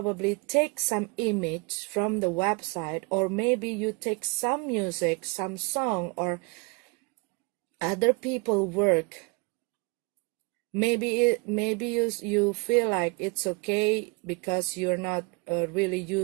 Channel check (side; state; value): left; quieter; 30.2 dB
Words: take some image from the website, or maybe you take some music, some song, or other people work. Maybe you feel like it's okay because you're not really